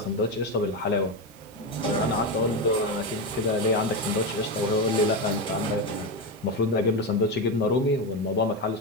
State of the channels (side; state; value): both; normal; correlation 0.13